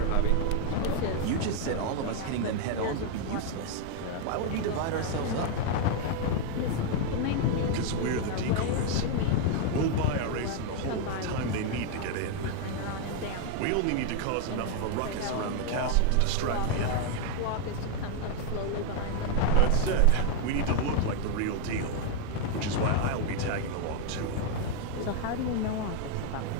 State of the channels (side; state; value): both; different; correlation 0.00